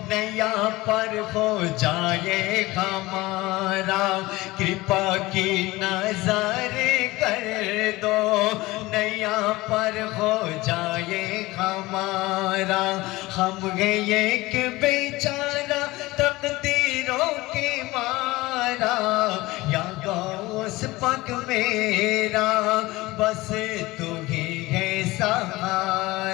نیا پر ہو جائے ہمارا کرپا کی نظر کر دو نیا پر ہو جائے ہمارا ہم گئے ایک بیچارہ تقدیروں کے مارا یا غوث پاک میرا بس تو ہی ہے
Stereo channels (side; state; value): right; quieter; 20.0 dB